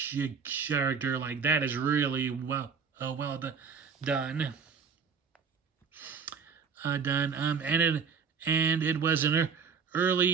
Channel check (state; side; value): quieter; left; 6.0 dB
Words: character, like that is really well done. And it was an